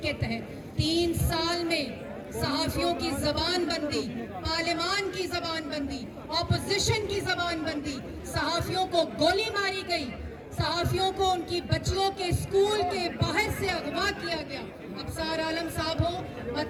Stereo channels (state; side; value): identical; both; correlation 1.00